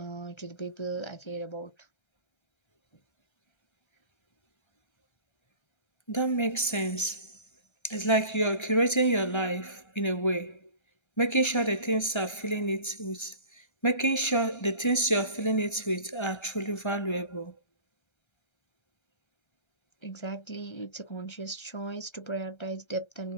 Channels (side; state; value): right; late; 1.3 ms